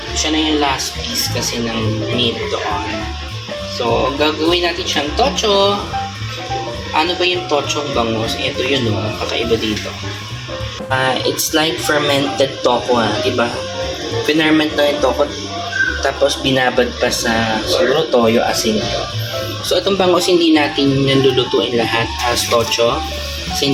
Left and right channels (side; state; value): both; identical; correlation 1.00